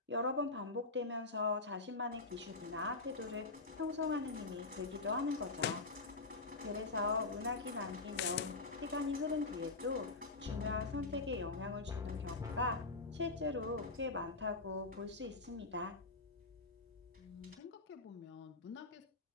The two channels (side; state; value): right; quieter; 3.5 dB